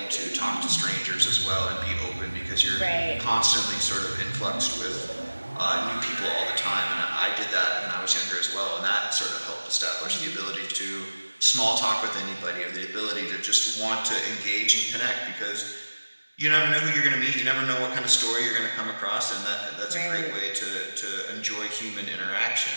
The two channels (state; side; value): inverted; both; correlation -1.00